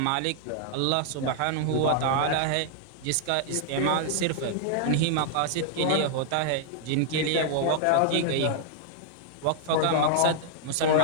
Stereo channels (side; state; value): both; different; correlation -0.01